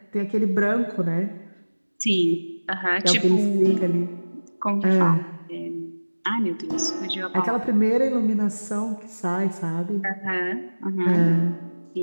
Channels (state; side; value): inverted; both; correlation -1.00